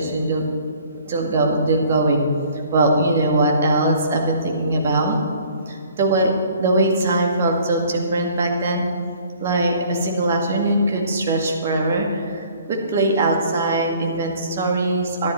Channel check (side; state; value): both; inverted; correlation -0.55